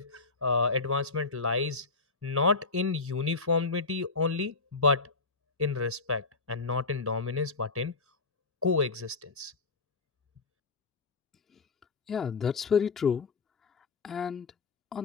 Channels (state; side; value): quieter; right; 4.0 dB